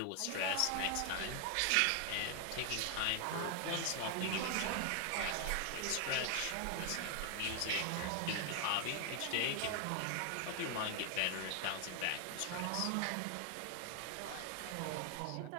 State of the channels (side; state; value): both; different; correlation 0.00